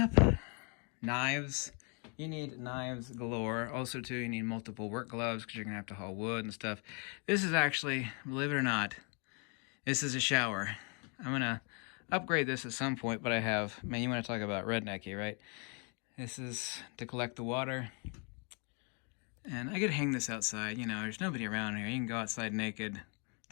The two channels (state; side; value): quieter; right; 35.6 dB